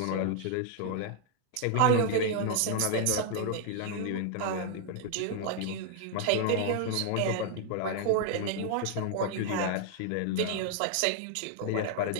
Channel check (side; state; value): both; different; correlation 0.00